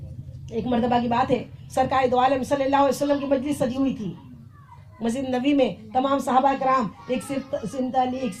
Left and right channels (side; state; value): both; identical; correlation 1.00